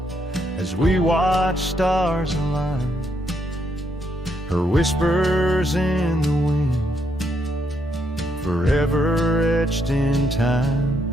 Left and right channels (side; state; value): both; normal; correlation 0.76